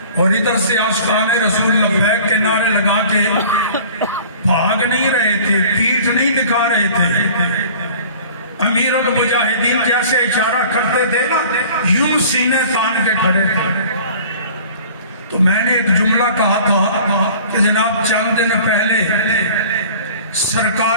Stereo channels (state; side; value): inverted; both; correlation -0.46